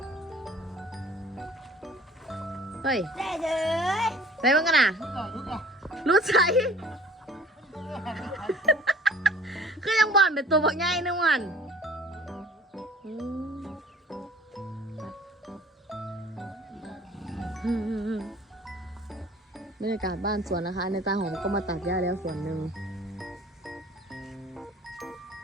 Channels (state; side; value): normal; both; correlation 0.50